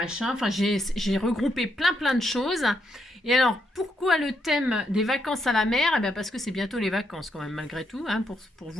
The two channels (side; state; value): both; normal; correlation 0.78